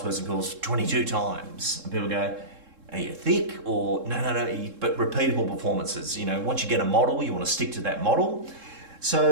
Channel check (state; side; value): late; left; 3.7 ms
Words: course 22 times. And people go, are you thick? Or no, but repeatable performances. You know, once you get a model, you want to stick to that model.